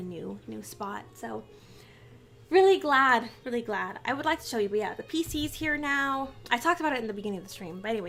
new spot. So really glad. I would like to show you, but yeah, the PC's here now. I talked about it in the beginning of the stream, but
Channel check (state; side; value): identical; both; correlation 1.00